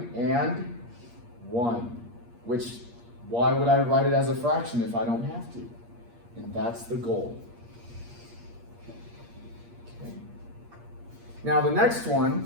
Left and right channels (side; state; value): left; late; 8.5 ms